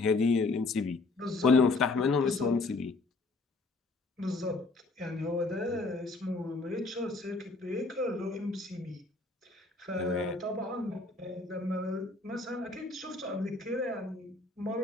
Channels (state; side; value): quieter; right; 3.5 dB